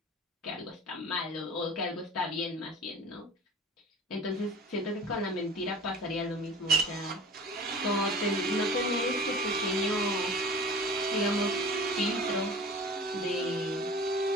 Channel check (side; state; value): both; normal; correlation 0.40